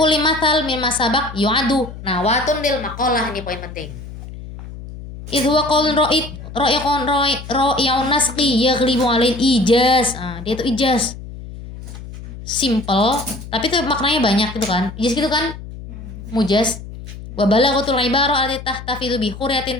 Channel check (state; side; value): noise; left; hum, 13 dB below the sound